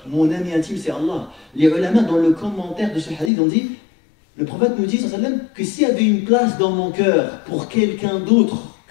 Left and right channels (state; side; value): drops out; right; at 3.3 s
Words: mon ami intime c'est Allah. Les ulama dans le commentaire de ce hadith ont dit, le prophète nous dit sallallahu alayhi wa sallam, que s'il y avait une place dans mon cœur pour quelqu'un d'autre